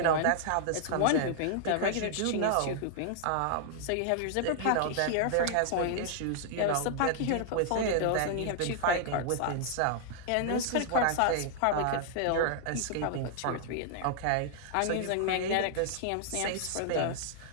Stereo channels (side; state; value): both; different; correlation -0.01